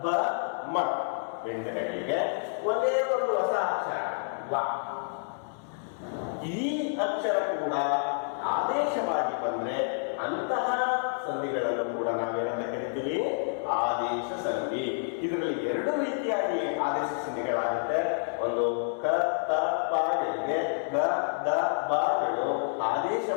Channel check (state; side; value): silent; right; digital silence